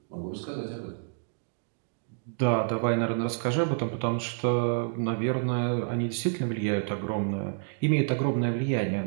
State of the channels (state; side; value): silent; left; digital silence